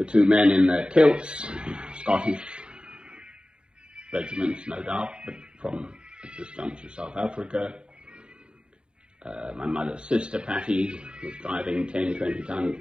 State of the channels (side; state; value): left; late; 0.052 ms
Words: two men in their kilts, Scottish regiments, no doubt, but from, at this juncture, South Africa. My mother's sister, Patty, was driving 10,